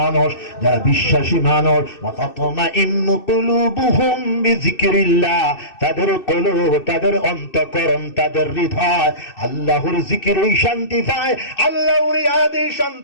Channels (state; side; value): late; right; 2.6 ms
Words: যারা বিশ্বাসী মানুষ ওয়া তাতমাইন্নু কুলুবুহুম বিযিকরিল্লাহ তাদের কলব তাদের অন্তঃকরণ তাদের হৃদয় আল্লাহর জিকিরে শান্তি পায় আল্লাহর ইয়াদে